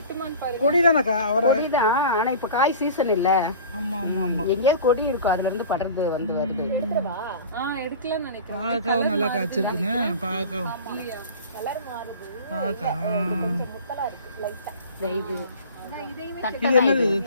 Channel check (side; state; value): both; inverted; correlation -0.39